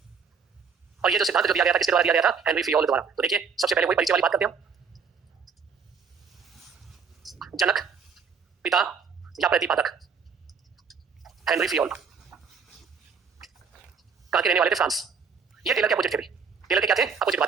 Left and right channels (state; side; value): quieter; left; 5.9 dB